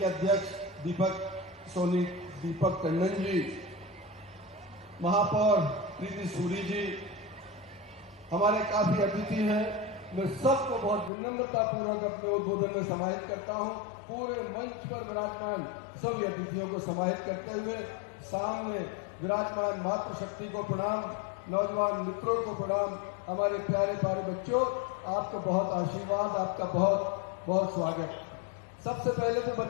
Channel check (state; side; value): drops out; right; at 11.1 s